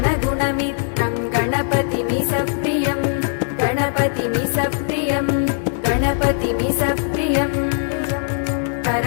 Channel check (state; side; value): silent; right; 59 dB below the other